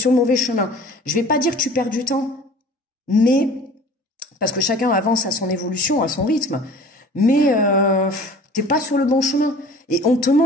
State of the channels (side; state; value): both; normal; correlation 0.45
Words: le mauvais chemin. Je vais pas dire que tu perds du temps, mais parce que chacun avance à son évolution, à son rythme. Mais t'es pas sur le bon chemin. Et on te